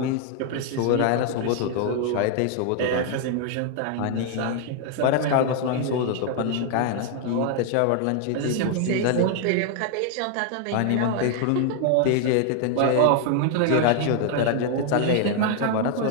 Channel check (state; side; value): different; both; correlation 0.00